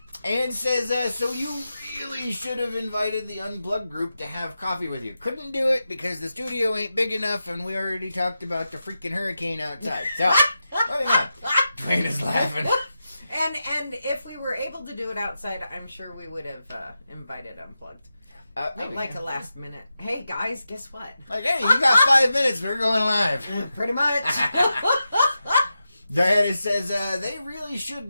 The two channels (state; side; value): inverted; both; correlation -0.90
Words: And says, so you really should have invited the Unplugged group to have coffee with you. Couldn't do it because the studio ain't big enough and we already talked about the freaking hurricane outside. So, moving on. Dwayne is laughing. And if we were able to do it outside, I'm sure we would have invited Unplugged. Like a last minute. Hey guys, guess what? Like, hey, you got 5 minutes. We're going live. Pretty much. Diana says, they really should